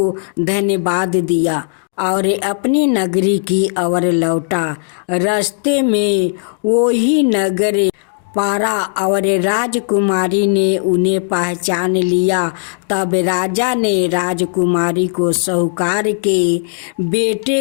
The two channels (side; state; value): right; silent; digital silence